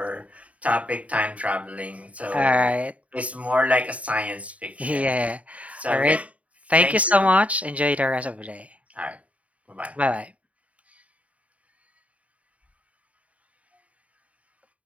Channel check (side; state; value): left; late; 0.067 ms